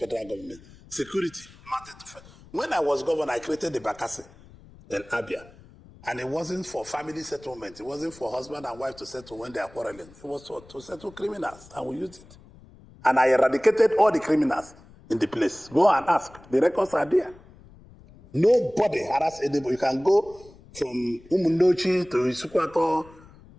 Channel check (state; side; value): noise; left; rumble, 23 dB below the sound